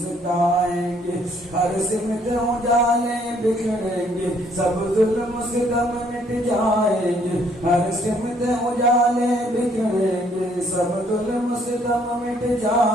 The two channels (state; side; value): normal; both; correlation 0.65